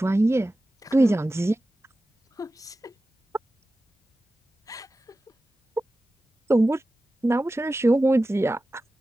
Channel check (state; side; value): normal; both; correlation 0.95